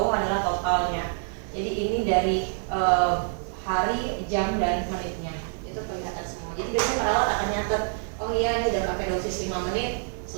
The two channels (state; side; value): silent; left; 61 dB below the other